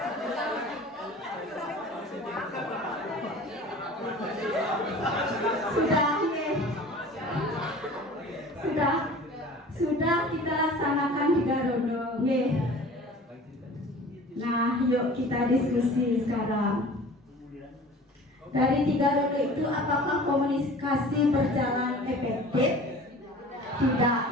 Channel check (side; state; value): both; normal; correlation 0.43